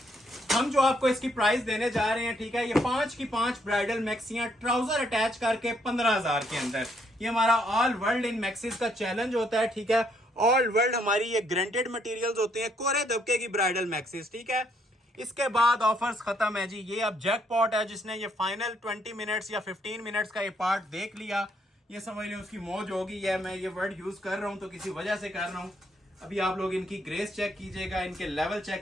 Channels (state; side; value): normal; both; correlation 0.71